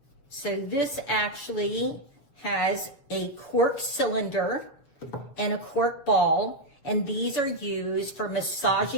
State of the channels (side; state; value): right; late; 7.2 ms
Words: So this actually has a cork cylinder and a cork ball, and these are used for